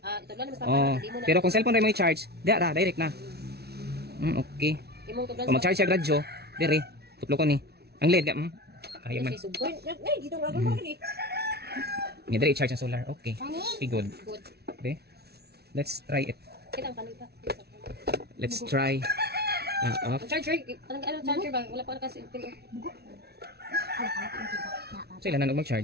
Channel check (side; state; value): left; late; 0.47 ms